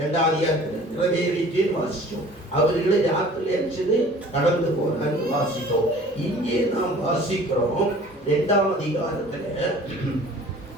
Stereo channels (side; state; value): both; normal; correlation 0.48